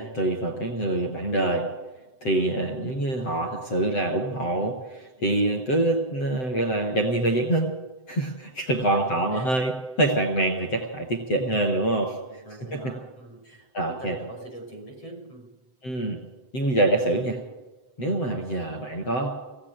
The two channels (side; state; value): right; late; 7.8 ms